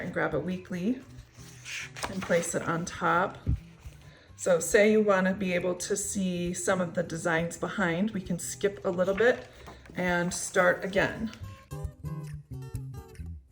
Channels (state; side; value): identical; both; correlation 1.00